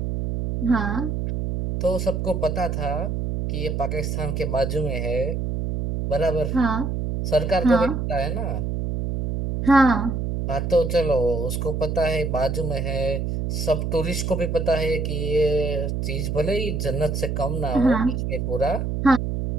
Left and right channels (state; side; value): noise; right; hum, 1 dB below the sound